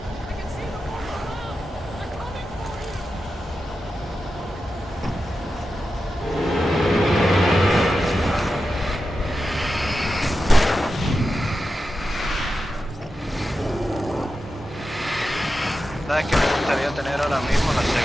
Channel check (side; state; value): both; normal; correlation 0.91